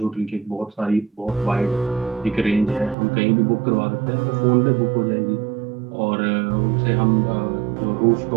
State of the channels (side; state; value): left; drops out; at 3.0 s